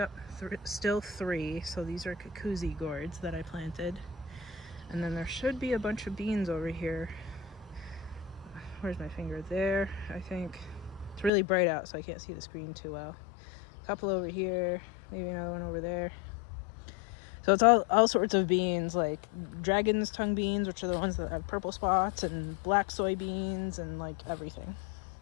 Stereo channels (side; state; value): right; drops out; at 11.3 s